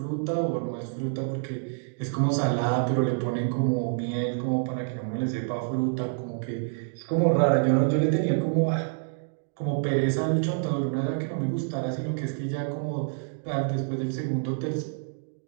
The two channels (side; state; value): left; silent; digital silence